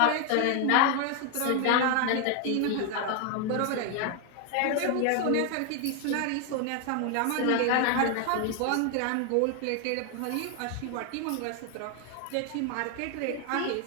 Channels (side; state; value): both; different; correlation 0.01